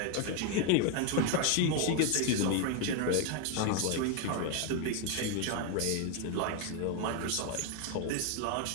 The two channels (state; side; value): different; both; correlation 0.01